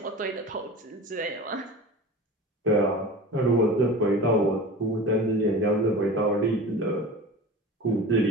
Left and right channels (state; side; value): normal; both; correlation 0.34